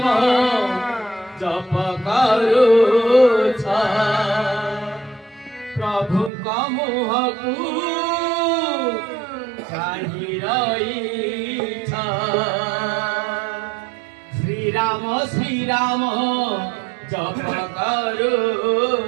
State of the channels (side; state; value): left; drops out; at 6.3 s